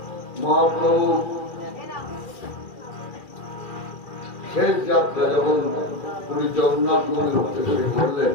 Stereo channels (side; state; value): right; late; 2.4 ms